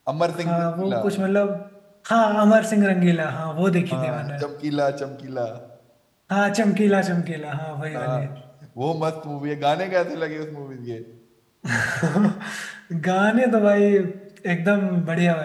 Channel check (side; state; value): both; identical; correlation 1.00